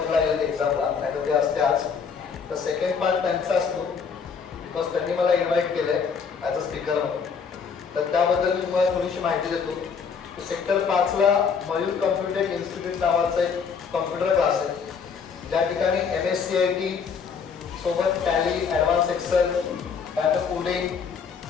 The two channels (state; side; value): quieter; right; 6.0 dB